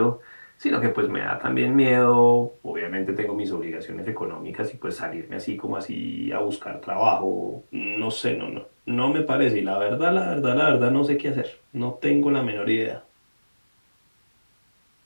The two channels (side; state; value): both; inverted; correlation -1.00